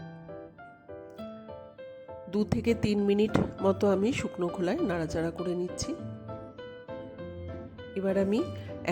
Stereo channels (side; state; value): both; identical; correlation 1.00